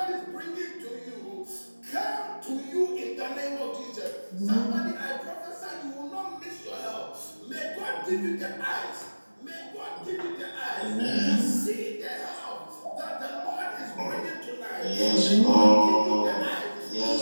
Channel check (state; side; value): inverted; both; correlation -1.00